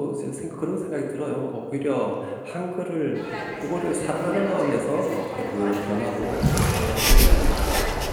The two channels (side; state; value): both; identical; correlation 1.00